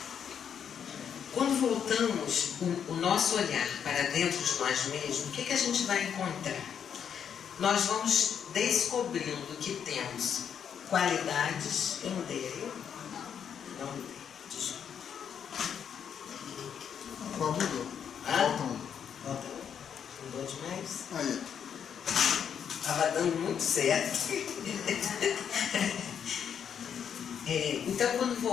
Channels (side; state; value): right; quieter; 8.0 dB